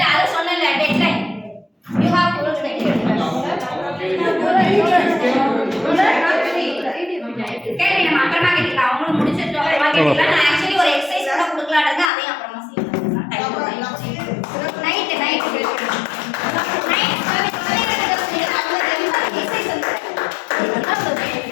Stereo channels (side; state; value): right; drops out; at 12.1 s